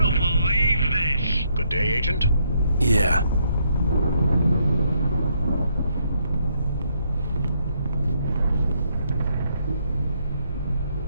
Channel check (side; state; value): both; inverted; correlation -0.73